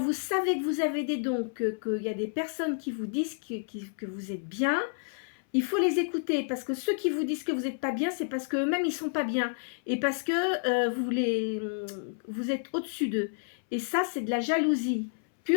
savez que vous avez des dons, qu'il y a des personnes qui vous disent que vous êtes bien, il faut les écouter. Parce que ceux qui vous disent que vous n'êtes pas bien, c'est parce qu'eux-mêmes, ils ne sont pas bien. Et parce que vous êtes au-dessus d'eux. Et ça, c'est de la jalousie,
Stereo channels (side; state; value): right; silent; 58 dB below the other